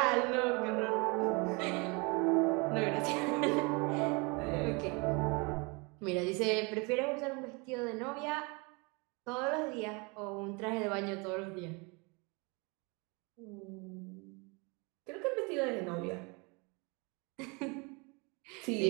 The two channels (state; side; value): quieter; left; 29.6 dB